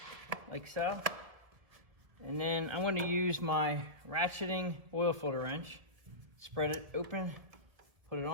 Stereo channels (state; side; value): late; left; 1.7 ms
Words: like so. And then I'm going to use my ratcheting oil filter wrench. Spread it open, put it